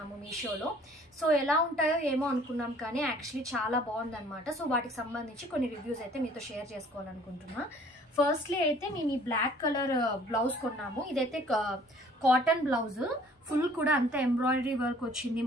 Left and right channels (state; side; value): normal; both; correlation 0.55